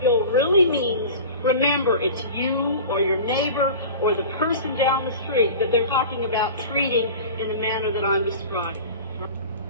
really means, remember it's you or your neighbor or the person down the street that they're talking about treating in the manner that I'm describing.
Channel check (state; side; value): inverted; both; correlation -0.36